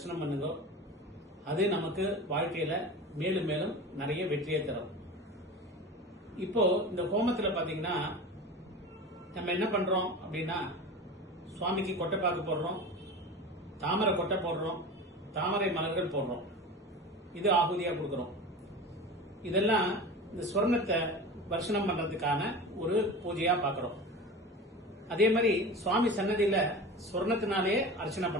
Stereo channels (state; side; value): normal; both; correlation 0.32